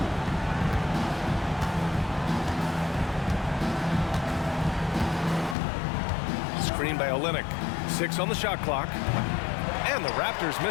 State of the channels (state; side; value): drops out; right; at 5.6 s